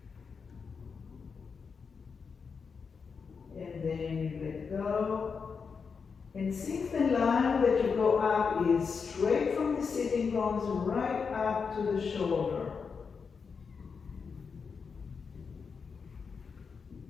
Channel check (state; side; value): quieter; right; 5.6 dB